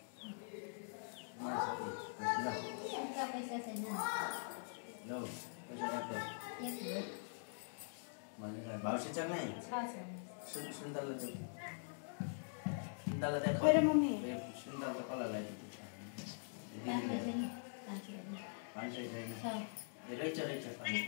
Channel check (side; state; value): right; silent; digital silence